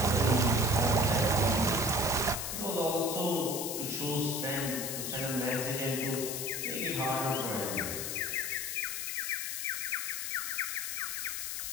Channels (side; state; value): left; noise; hiss, 3 dB below the sound